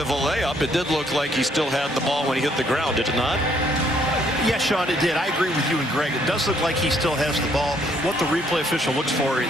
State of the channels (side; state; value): both; normal; correlation 0.67